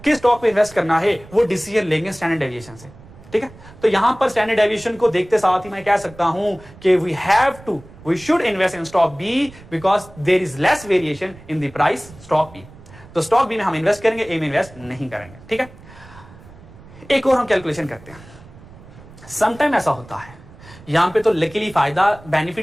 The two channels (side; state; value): right; noise; rumble, 21 dB below the sound